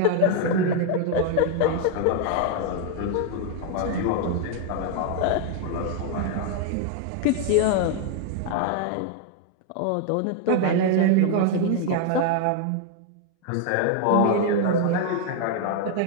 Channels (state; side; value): different; both; correlation 0.00